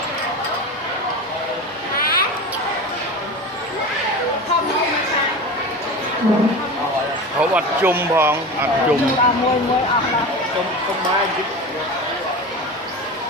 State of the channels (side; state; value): both; normal; correlation 0.29